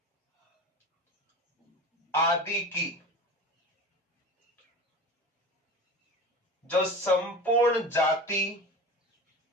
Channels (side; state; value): both; normal; correlation 0.32